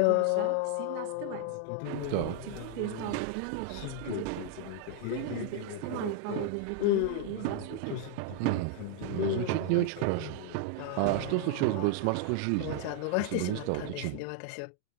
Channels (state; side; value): different; both; correlation 0.00